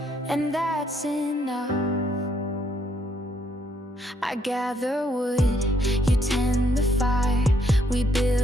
and that's enough. I gather wood, you tend the fire. We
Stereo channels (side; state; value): both; normal; correlation 0.71